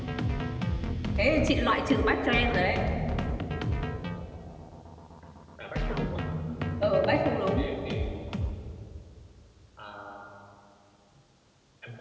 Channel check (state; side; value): identical; both; correlation 1.00